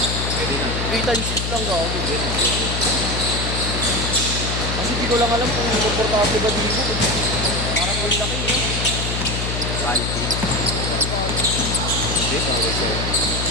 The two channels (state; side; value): noise; left; hum, 3 dB below the sound